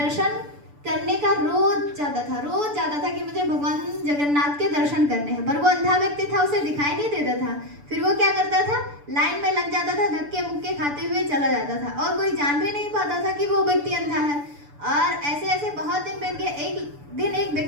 करने का रोज जाता था कि मुझे भगवान जगन्नाथ के दर्शन करने हैं, पर वो अंधा व्यक्ति था, उसे दिखाई नहीं देता था। फिर वो क्या करता था, लाइन में लग जाता था, धक्के मुक्के खाते हुए चला जाता था, और कोई जान भी नहीं पाता था कि वो व्यक्ति अंधा है। और ऐसे ऐसे बहुत दिन बीत गए। एक दिन एक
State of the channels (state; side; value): late; left; 6.9 ms